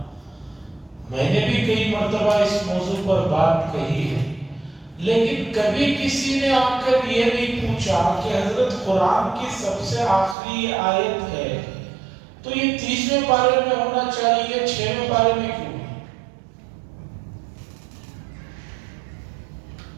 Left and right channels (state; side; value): drops out; left; at 10.4 s